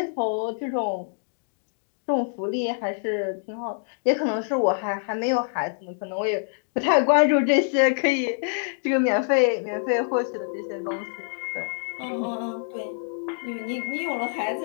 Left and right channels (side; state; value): right; silent; digital silence